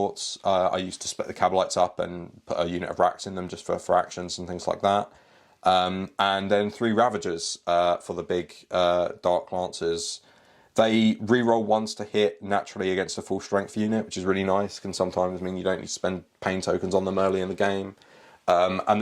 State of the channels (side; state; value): both; identical; correlation 1.00